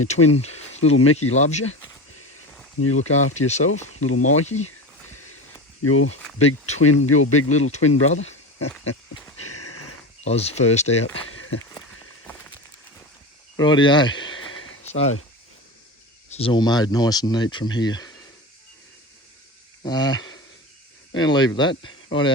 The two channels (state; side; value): normal; both; correlation 0.26